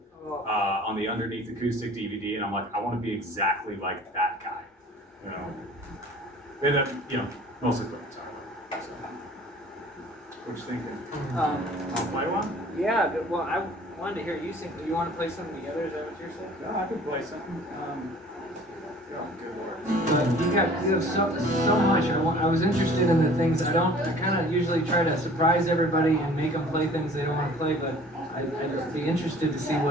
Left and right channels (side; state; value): both; normal; correlation 0.49